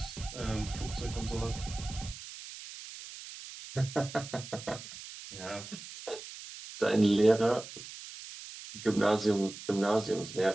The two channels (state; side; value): noise; right; hiss, 13 dB below the sound